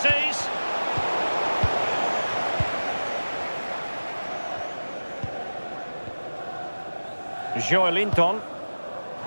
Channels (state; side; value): inverted; both; correlation -1.00